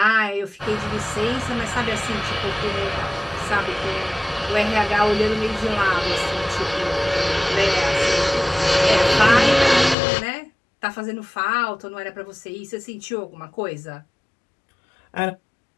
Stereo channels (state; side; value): drops out; right; at 10.0 s